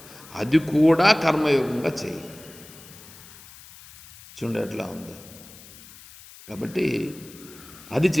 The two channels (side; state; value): left; noise; hiss, 20 dB below the sound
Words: అది కూడా కర్మయోగంగా చేయి. చూడండి ఎట్లా ఉందో. కాబట్టి అది